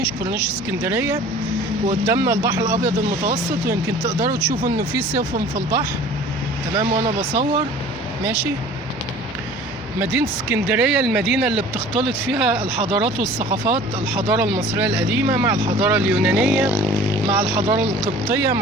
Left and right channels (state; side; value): normal; both; correlation 0.46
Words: اسكندرية، وقدامنا البحر الابيض المتوسط، ويمكن تقدروا تشوفوا انه في سفن في البحر، تمام. وانا بصور ماشي. مدينة اسكندرية المدينة اللي بتختلط فيها الحضارات والثقافات، الحضارة المصرية القديمة مع الحضارة اليونانية مع الحضارة القبطية